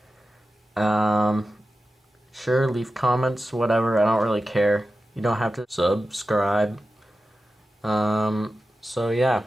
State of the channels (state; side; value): normal; both; correlation 0.93